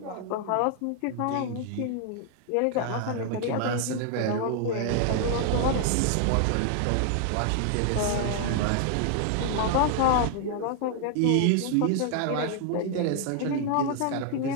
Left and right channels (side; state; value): both; different; correlation 0.00